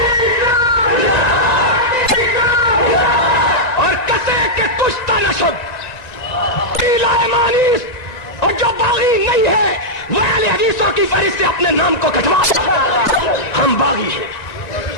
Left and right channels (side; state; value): right; late; 1.9 ms